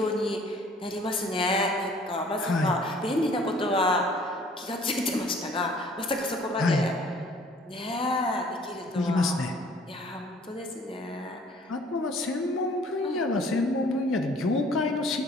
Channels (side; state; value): both; normal; correlation 0.55